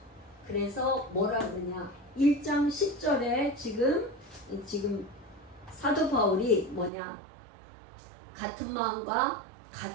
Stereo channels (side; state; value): left; drops out; at 6.9 s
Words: 그래서 뭐라 그러냐? 1장 10절에 지금 사도 바울이 뭐냐? 같은 마음과